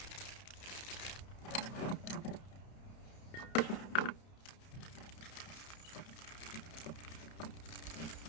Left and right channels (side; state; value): right; late; 31 ms